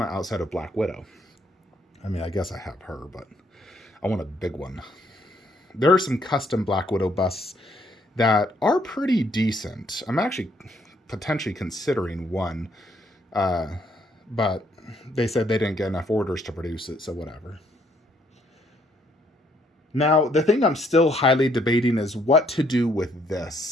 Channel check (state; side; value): normal; both; correlation 0.69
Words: outside of Black Widow. I mean, I guess I have her, but I want a big one. There are some custom Black Widow busts that are pretty decent. I'm actually potentially considering one, but they said they didn't get enough orders to produce it, so whatever. Now, the thing I'm still highly debating is what to do with